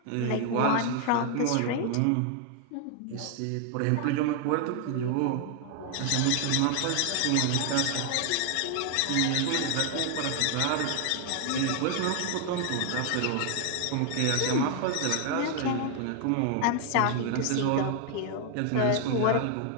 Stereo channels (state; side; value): different; both; correlation 0.00